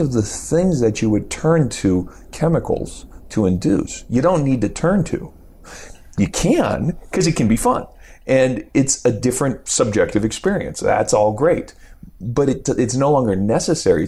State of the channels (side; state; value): both; identical; correlation 1.00